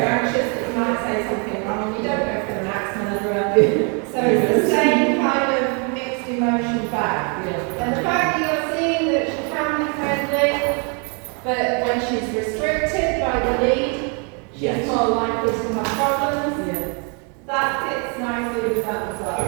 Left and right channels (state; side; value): quieter; left; 36.6 dB